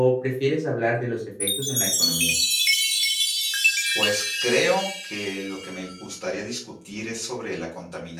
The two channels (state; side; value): identical; both; correlation 1.00